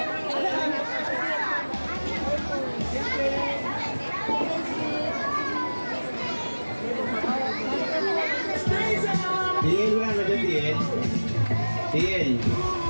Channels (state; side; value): inverted; both; correlation -1.00